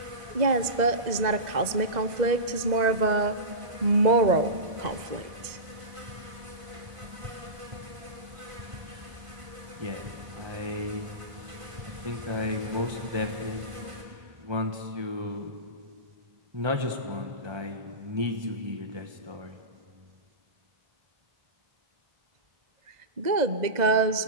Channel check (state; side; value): late; left; 1.9 ms